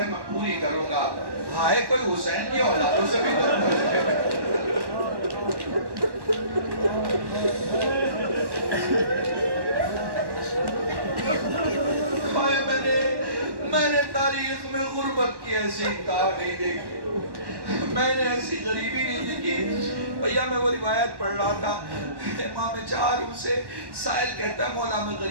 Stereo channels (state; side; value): late; left; 1.1 ms